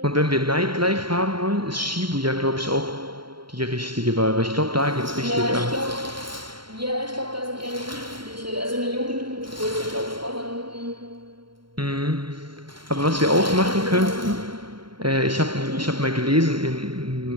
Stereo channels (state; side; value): late; left; 0.73 ms